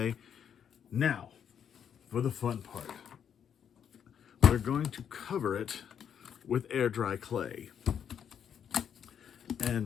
Now, for the fun part, we're going to cover it with air dry clay.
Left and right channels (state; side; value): quieter; right; 8.3 dB